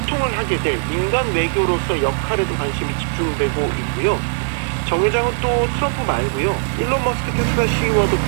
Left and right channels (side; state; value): left; silent; digital silence